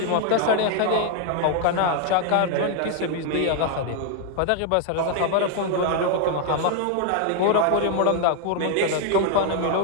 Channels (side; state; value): both; different; correlation 0.00